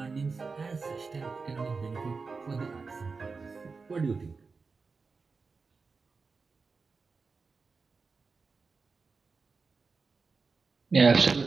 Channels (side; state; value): left; quieter; 4.5 dB